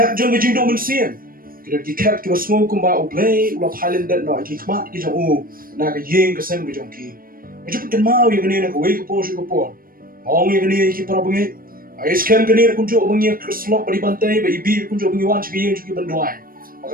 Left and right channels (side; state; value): left; late; 0.41 ms